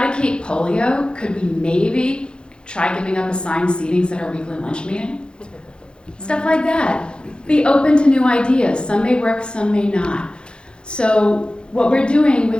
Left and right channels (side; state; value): right; late; 0.052 ms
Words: polio, could we maybe try giving up assigned seatings at our weekly lunch meeting? Stuff like that. Be open to new ideas. Some may work, some may not. So what we're doing